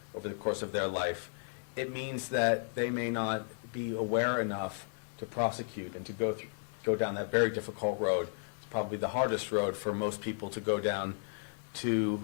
over the course of their life. It means that they may not be aware enough to prosecute and to go down that very difficult road. It's probably the hardest road for most people to go down, to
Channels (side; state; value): right; silent; digital silence